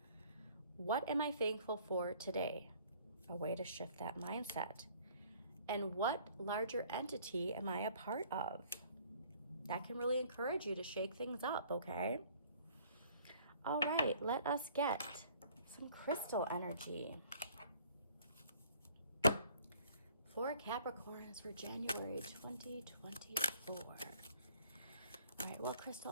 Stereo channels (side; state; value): both; inverted; correlation -0.56